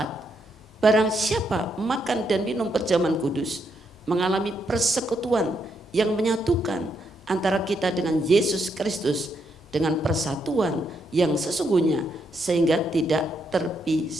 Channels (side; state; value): both; normal; correlation 0.78